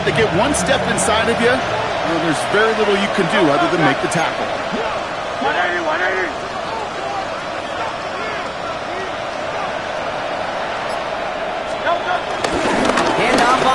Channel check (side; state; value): both; identical; correlation 1.00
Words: they get one step inside of you, there's very little you can do other than make the tackle. 180, 180. Handoff